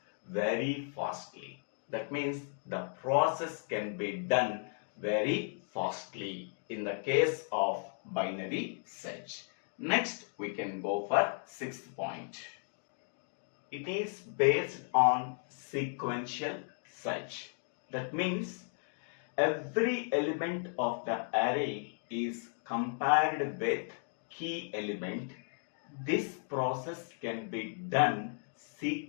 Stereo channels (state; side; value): silent; right; 54 dB below the other